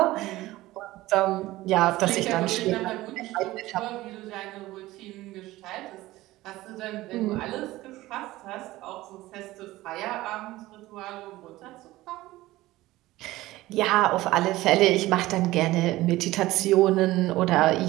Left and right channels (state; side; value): quieter; left; 17.5 dB